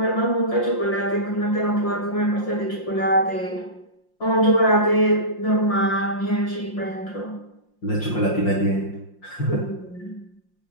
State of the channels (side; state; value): right; late; 5.7 ms